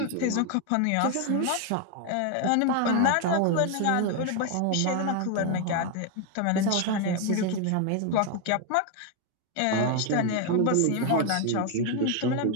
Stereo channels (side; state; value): both; different; correlation 0.01